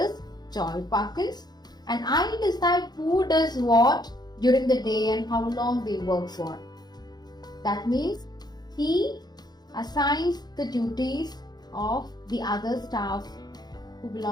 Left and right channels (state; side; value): late; right; 0.20 ms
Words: Joy Parkins, and I decide who does what during the day and how long they work for. That means he assigns the duties of the other staff who